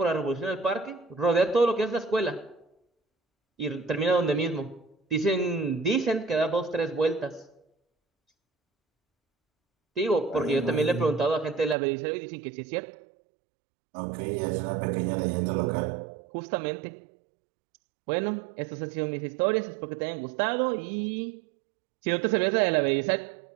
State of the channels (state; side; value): drops out; left; at 11.8 s